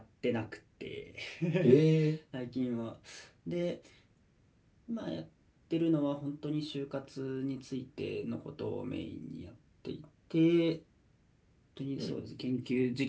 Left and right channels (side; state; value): both; identical; correlation 1.00